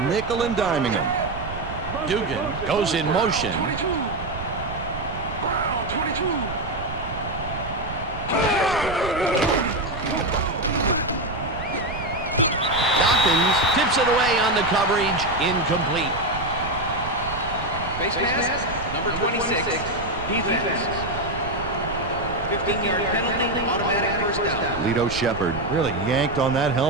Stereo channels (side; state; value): right; noise; rumble, 9 dB below the sound